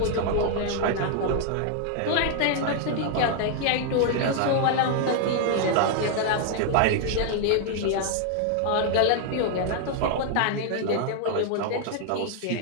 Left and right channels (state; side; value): different; both; correlation 0.00